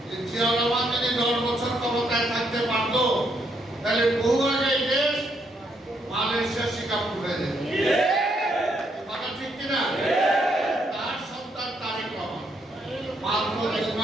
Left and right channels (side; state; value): both; normal; correlation 0.75